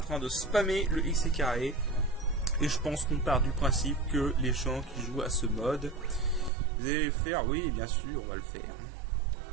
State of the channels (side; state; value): left; drops out; at 6.5 s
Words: train de spammer le X et carré, et je pense qu'on part du principe que les gens qui jouent à ce mode, vous allez le faire, oui bien sûr, on va le faire.